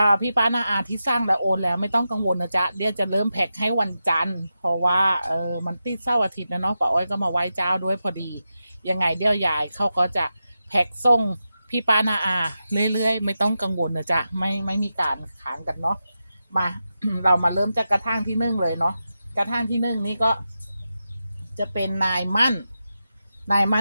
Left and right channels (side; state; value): both; inverted; correlation -0.90